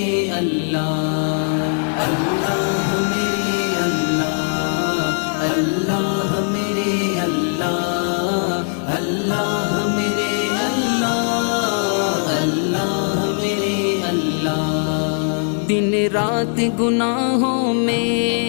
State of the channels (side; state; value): right; silent; 63 dB below the other